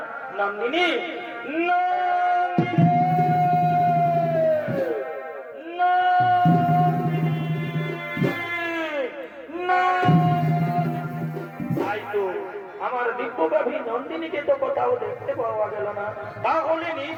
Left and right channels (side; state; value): both; identical; correlation 1.00